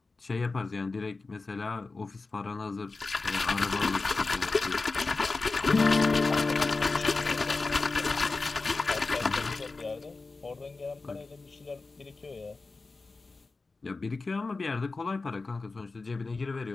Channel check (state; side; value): quieter; right; 3.8 dB